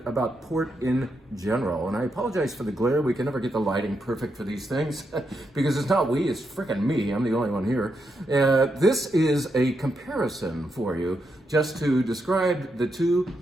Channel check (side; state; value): both; normal; correlation 0.83